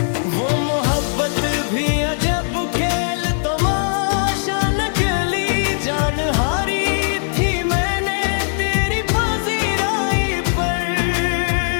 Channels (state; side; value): silent; right; digital silence